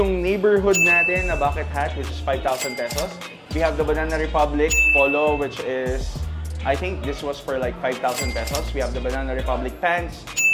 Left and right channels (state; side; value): identical; both; correlation 1.00